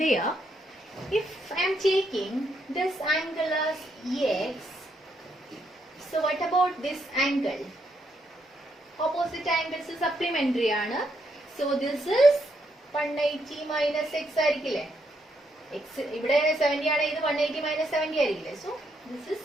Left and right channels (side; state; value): both; normal; correlation 0.77